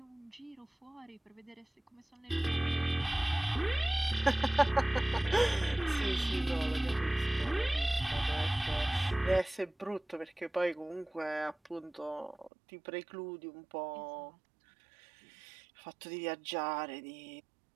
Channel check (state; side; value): drops out; left; at 12.5 s